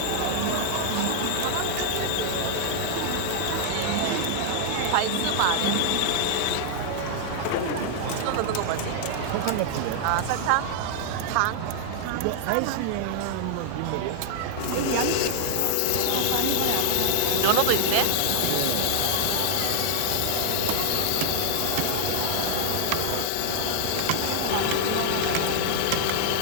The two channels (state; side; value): different; both; correlation 0.00